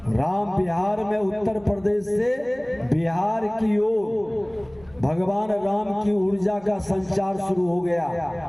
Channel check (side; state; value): right; noise; hum, 26 dB below the sound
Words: राम बिहार में उत्तर प्रदेश से बिहार की ओर भगवान राम की ऊर्जा का संचार शुरू हो गया।